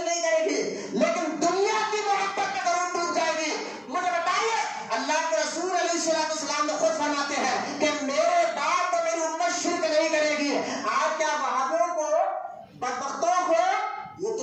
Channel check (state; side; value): identical; both; correlation 1.00